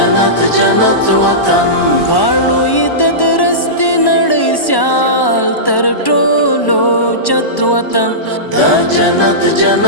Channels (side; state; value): right; late; 1.1 ms